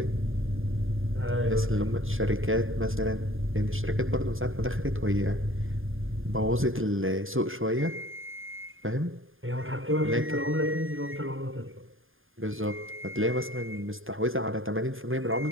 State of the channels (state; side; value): late; left; 0.59 ms